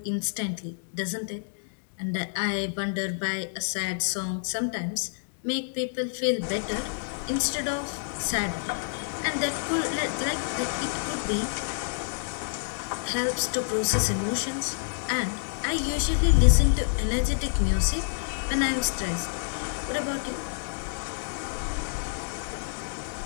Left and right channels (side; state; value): right; silent; digital silence